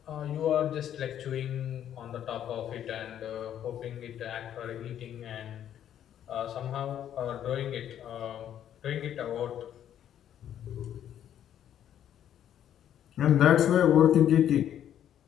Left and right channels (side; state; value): right; quieter; 10.4 dB